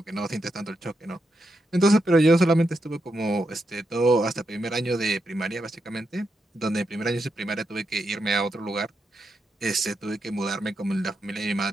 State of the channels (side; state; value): both; normal; correlation 0.84